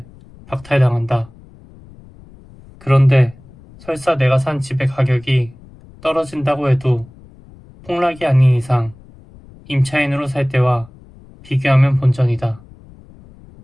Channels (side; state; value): left; noise; rumble, 23 dB below the sound